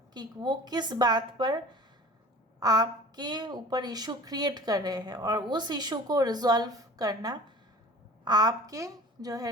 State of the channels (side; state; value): both; normal; correlation 0.43